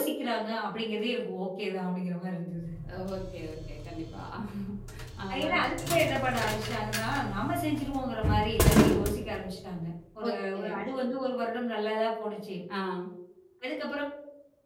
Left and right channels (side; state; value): both; identical; correlation 1.00